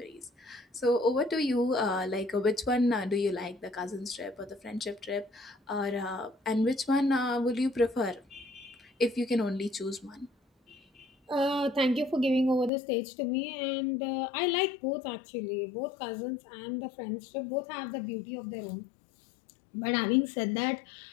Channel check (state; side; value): drops out; right; at 12.7 s